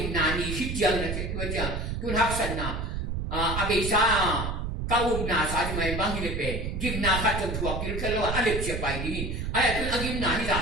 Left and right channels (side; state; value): right; noise; rumble, 3 dB below the sound